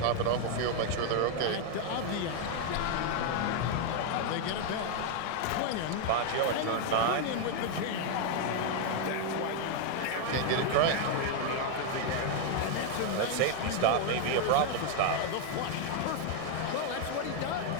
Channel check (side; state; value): both; different; correlation 0.00